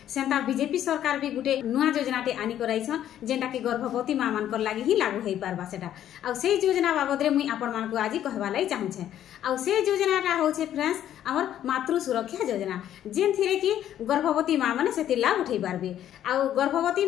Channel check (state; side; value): quieter; right; 11.2 dB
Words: सेंता बीजेपी सरकार भी गुटे नुआ योजनाटे आनी कराइछन जेंटा कि गर्भवती मां मान कर लागि ही लागू हेइ पारबा सेटा आ से योजना बाबद रे मुई आपन मान को आज कहबा लाई चाहू छे। आ से योजनाटा होछे फ्रेंड्स हमर मातृ सुरक्षा योजना जेन थिरे कि गर्भवती मां माने सेति लाभ उठै पारबे आ गर्भवती